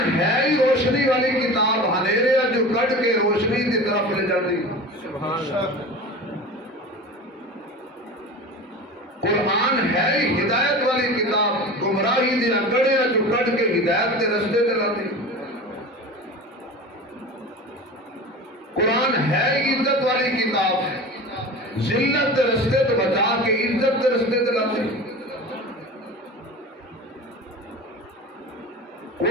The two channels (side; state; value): both; normal; correlation 0.33